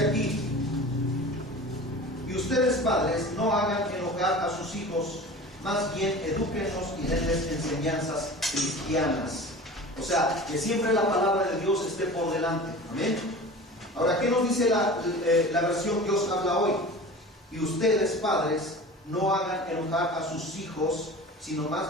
aquí: y ustedes, padres, no hagan enojar a sus hijos, más bien edúquenlos y denles enseñanzas cristianas. O sea, que siempre la palabra de Dios esté por delante. Amén. Ahora, ¿qué nos dice la versión que os habla hoy? Y ustedes, padres, no hagan enojar a sus hijos, sino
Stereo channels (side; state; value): both; normal; correlation 0.37